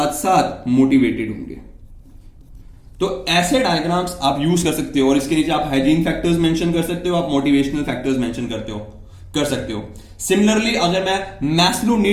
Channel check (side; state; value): both; identical; correlation 1.00